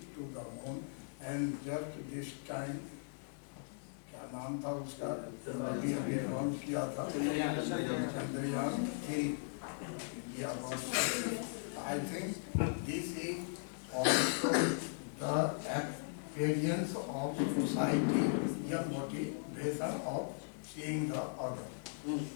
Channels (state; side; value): silent; right; digital silence